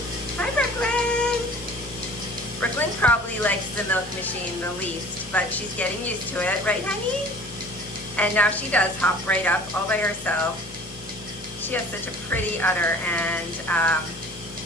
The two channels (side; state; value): both; normal; correlation 0.47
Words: Hi, Brooklyn. Brooklyn probably likes the milk machine the least, but she's getting used to it, right, honey? And now she does hop right up all by herself. She has such a pretty udder, and